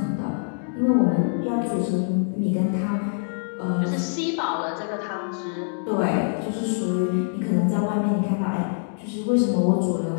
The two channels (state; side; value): silent; right; digital silence